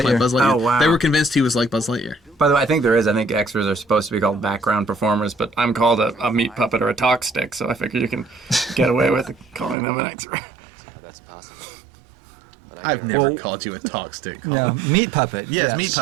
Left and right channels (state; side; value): drops out; left; at 9.8 s